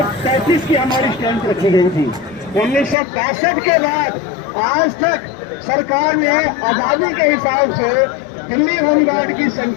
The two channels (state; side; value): drops out; right; at 3.0 s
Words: की हमारी स्ट्रेंथ रखी गई थी। 1962 के बाद आज तक सरकार ने आजादी के हिसाब से दिल्ली होमगार्ड की